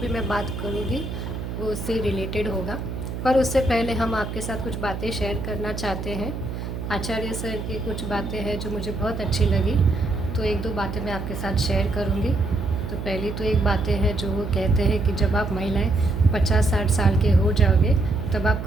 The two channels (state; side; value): noise; right; hum, 6 dB below the sound